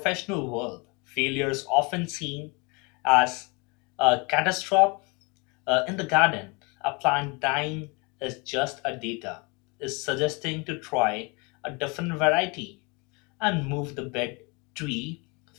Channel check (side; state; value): right; quieter; 29.5 dB